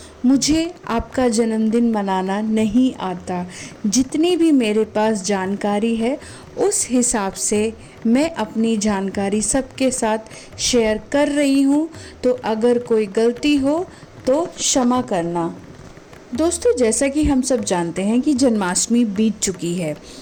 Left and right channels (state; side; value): identical; both; correlation 1.00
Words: मुझे आपका जन्मदिन मनाना नहीं आता। जितनी भी मेरे पास जानकारी है उस हिसाब से मैं अपनी जानकारी सबके साथ शेयर कर रही हूँ, तो अगर कोई गलती हो तो क्षमा करना। दोस्तों, जैसा कि हम सब जानते हैं कि जन्माष्टमी बीत चुकी है